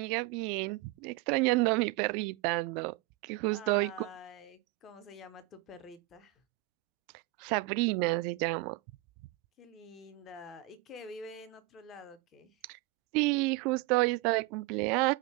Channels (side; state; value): left; quieter; 19.6 dB